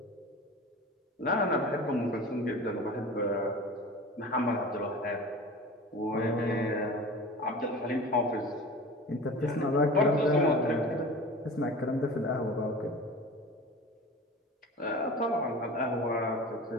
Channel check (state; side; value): normal; both; correlation 0.36